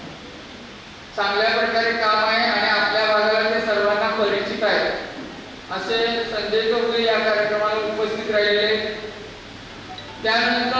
चांगल्या प्रकारे काम आहे आणि आपल्या भागाला ते सर्वांना परिचित आहे। असे संजय चौगुले या कार्यक्रमाला उपस्थित राहिले।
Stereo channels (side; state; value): both; identical; correlation 1.00